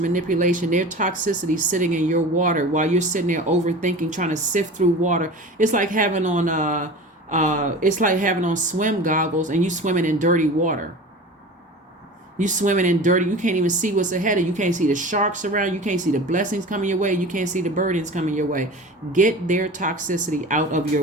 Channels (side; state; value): both; normal; correlation 0.36